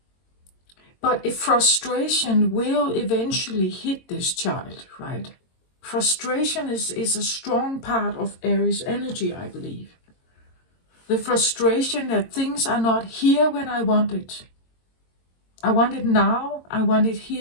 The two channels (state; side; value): late; right; 22 ms